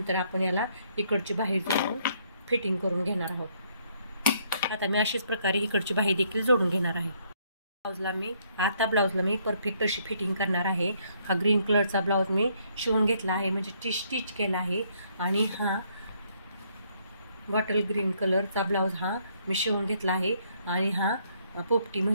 आपण याला इकडची बाही जोडून फिटिंग करून घेणार आहोत. आता मी अशाच प्रकारे इकडची बाही देखील जोडून घेणार आहे. ब्लाऊजला मी परफेक्ट अशी फिटिंग करणार आहे. हा ग्रीन कलरचा ब्लाऊज मी शिवून घेतला आहे, म्हणजे स्टिच केला आहे. आणि हा बॉटल ग्रीन कलरचा ब्लाऊज हा मी शिवून घेतला आहे. आणि हा पोपटी,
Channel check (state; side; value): inverted; both; correlation -0.69